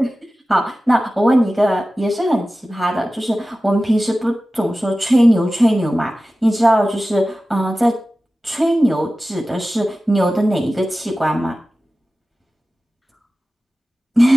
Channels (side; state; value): both; normal; correlation 0.96